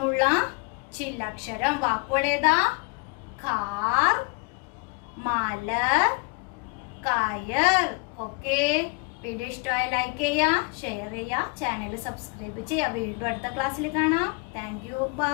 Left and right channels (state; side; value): quieter; right; 31.1 dB